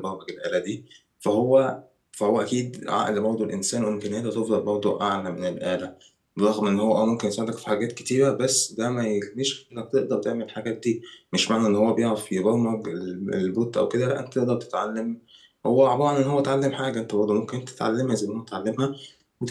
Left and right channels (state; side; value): identical; both; correlation 1.00